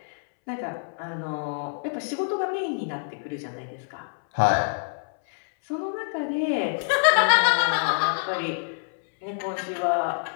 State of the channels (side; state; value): right; silent; 61 dB below the other